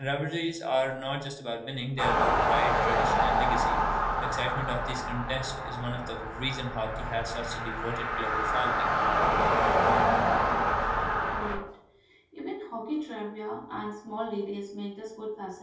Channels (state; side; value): identical; both; correlation 1.00